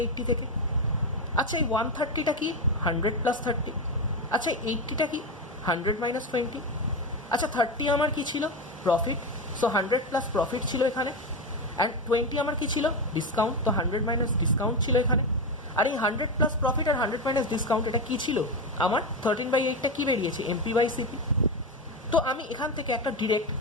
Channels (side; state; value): both; normal; correlation 0.14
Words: থেকে। আচ্ছা এই 130টা কি 100 + 30, আচ্ছা 80টা কি 100 - 20, আচ্ছা 30 আমার কি ছিল, প্রফিট, সো 100 + প্রফিট ছিল এখানে, অ্যান্ড 20 আমার কি ছিল, ডিসকাউন্ট, তো 100 - ডিসকাউন্ট ছিল এখানে। আর এই 100 + প্রফিট আর 100 - ডিসকাউন্ট এটা কী ছিল, আমার 13/8টা কী বেরিয়েছে, এমপি বাই সিপি। তো আমি এখান থেকে একটা ডিরেক্ট